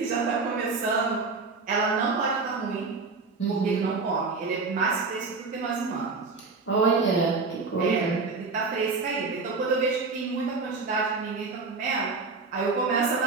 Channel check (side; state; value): left; quieter; 4.3 dB